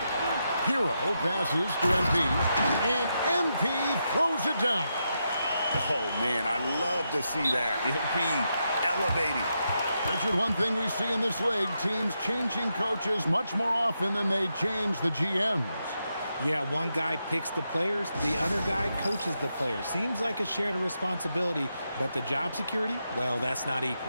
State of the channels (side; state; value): both; inverted; correlation -0.84